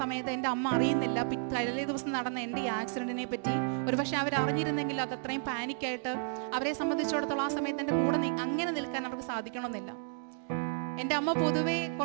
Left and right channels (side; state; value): left; silent; 56 dB below the other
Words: എൻ്റെ അമ്മ അറിയുന്നില്ല തലേ ദിവസം നടന്ന എൻ്റെ ഈ ആക്സിഡൻറ്റിനെ പറ്റി. ഒരുപക്ഷെ അവർ അറിഞ്ഞിരുന്നെങ്കിൽ അത് അത്രയും പാനിക്കായിട്ട് അവരെ സംബന്ധിച്ചിടത്തോളം ആ സമയത്ത് എൻ്റെ കൂടെ അങ്ങനെ നിൽക്കാൻ അവർക്ക് സാധിക്കണമെന്നില്ല. എൻ്റെ അമ്മ പൊതുവേ